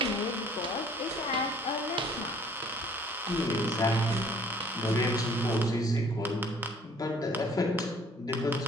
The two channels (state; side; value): normal; both; correlation 0.56